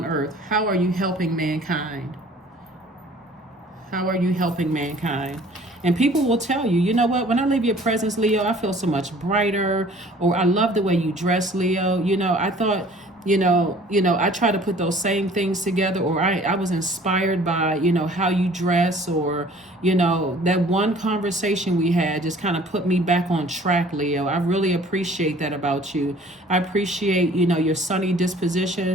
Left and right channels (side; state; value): both; normal; correlation 0.52